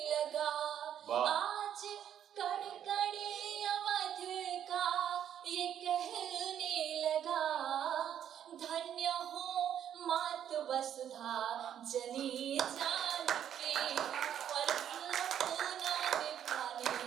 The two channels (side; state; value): left; quieter; 9.8 dB